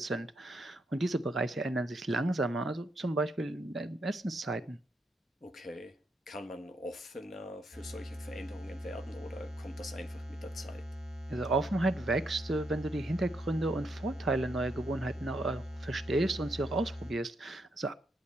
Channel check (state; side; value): normal; both; correlation 0.79